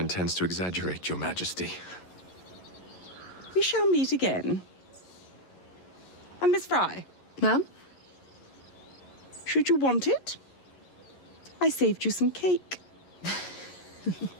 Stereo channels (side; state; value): right; late; 11 ms